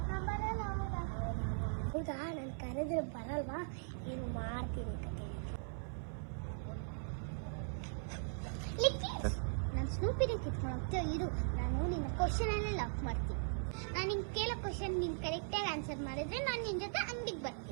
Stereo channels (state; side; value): silent; left; 51 dB below the other